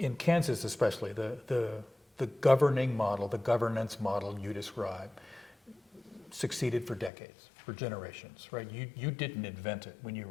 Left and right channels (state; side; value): drops out; right; at 7.1 s